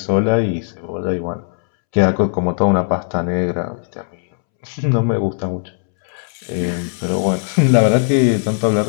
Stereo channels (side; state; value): right; silent; 67 dB below the other